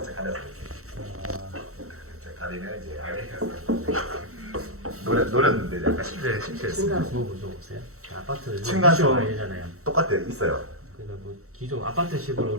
가려서 이렇게 가리면 이제 아메리칸 스탠다드. 노렸는데 약간 실패했어요. 층간소음 무서우세요? 아파트 층간소음. 많이 되잖아요. 똑같아요. 있어요. 그러니까 뭐 기존 아파트식으로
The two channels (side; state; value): left; late; 0.64 ms